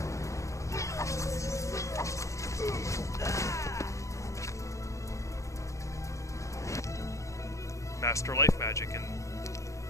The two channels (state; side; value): late; right; 0.15 ms